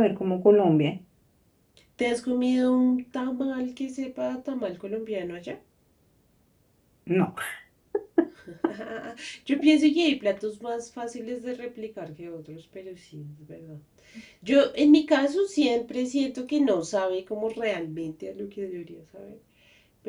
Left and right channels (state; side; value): identical; both; correlation 1.00